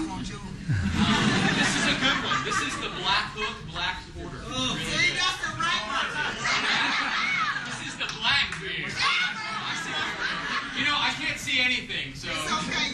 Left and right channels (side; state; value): both; identical; correlation 1.00